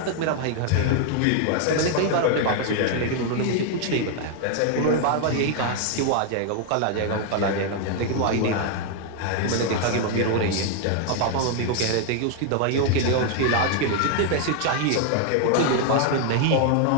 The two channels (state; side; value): different; both; correlation 0.00